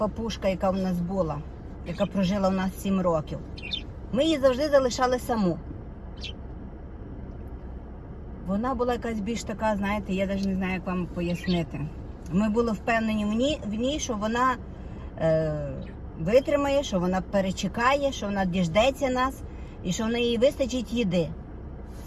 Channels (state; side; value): identical; both; correlation 1.00